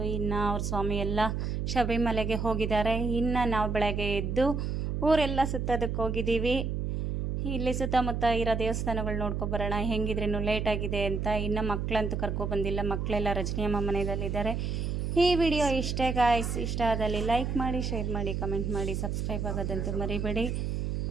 ಇನ್ನು ಅವ್ರ ಸ್ವಾಮಿ ಎಲ್ಲ ಶಬರಿಮಲೆಗೆ ಹೋಗಿದ್ದಾರೆ. ಇನ್ನು ನಾವು ಬೆಳಗ್ಗೆ ಎದ್ದು ಊರೆಲ್ಲ ಸುತ್ತೋದಕ್ಕೆ ಹೋಗಿದ್ದೀವಿ. ಇಲ್ಲಿ ಸುತ್ತಮುತ್ತ ಇರೋ ದೇವಸ್ಥಾನಗಳು ನೋಡ್ಕೊಬರೋಣ, ಹೆಂಗಿದ್ರೇನು ಲೇಟ್ ಆಗಿದೆ ಅಂತ. ಇನ್ನು ಮಕ್ಕಳಂತೂ ಕರ್ಕೊಬಂದಿಲ್ಲ, ಮಕ್ಕಳೆಲ್ಲ ರಜನಿಯಮ್ಮ ಮನೆಯಲ್ಲಿದ್ದಾರೆ. ಈ ವಿಡಿಯೋ ಇಷ್ಟೇ ಗಾಯ್ಸ್. ಇಷ್ಟ ಆದಲ್ಲಿ ಲೈಕ್ ಮಾಡಿ, ಶೇರ್ ಮಾಡಿ, ಕಮೆಂಟ್ ಮಾಡಿ, ಸಬ್ಸ್ಕ್ರೈಬ್ ಆಗೋದಂತೂ ಮರಿಬೇಡಿ.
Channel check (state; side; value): noise; right; hum, 1 dB below the sound